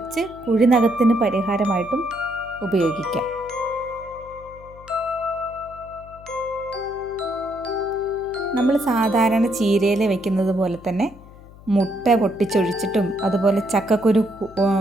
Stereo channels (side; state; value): left; noise; hum, 20 dB below the sound